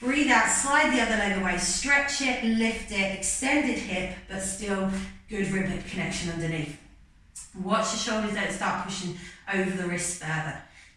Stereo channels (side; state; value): both; identical; correlation 1.00